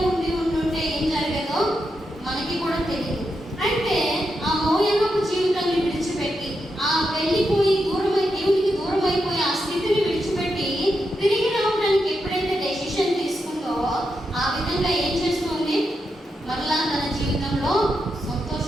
ఉంటే ఏం జరిగేదో మనకి కూడా తెలియదు. అయితే ఆ మోయాబు జీవితాన్ని విడిచిపెట్టి ఆ వెళ్ళిపోయి దేవునికి దూరం అయిపోయి ఆ స్థితిని విడిచిపెట్టి తిరిగి రావడానికి ఎప్పుడైతే డెసిషన్ తీసుకుందో ఆ విధంగా ఏం చేస్తుంది, మరలా తన జీవితంలో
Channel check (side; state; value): both; normal; correlation 0.85